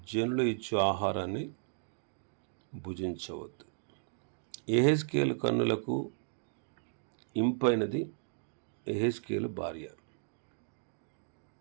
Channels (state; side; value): silent; left; digital silence